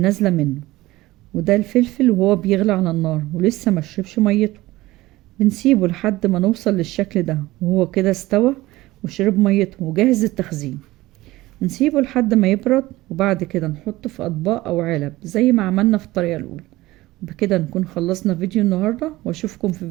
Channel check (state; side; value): quieter; left; 18.3 dB